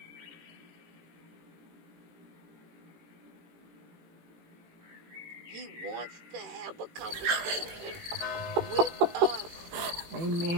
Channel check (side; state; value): left; late; 18 ms